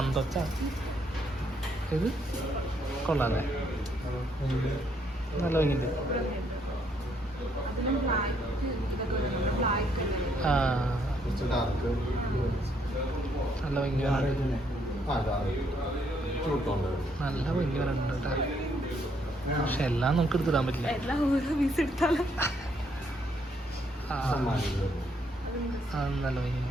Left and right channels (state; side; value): normal; both; correlation 0.71